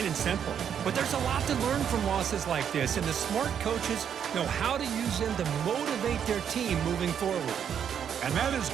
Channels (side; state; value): left; quieter; 8.4 dB